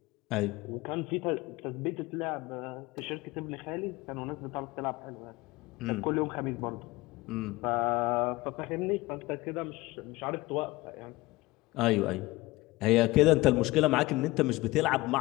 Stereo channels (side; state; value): right; quieter; 20.4 dB